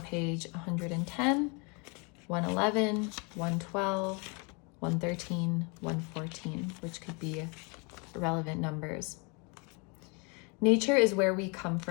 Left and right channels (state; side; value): quieter; right; 32.2 dB